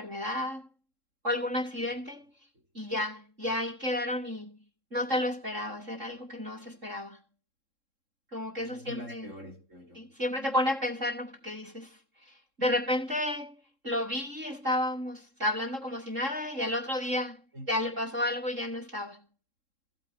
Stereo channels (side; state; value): left; late; 3.7 ms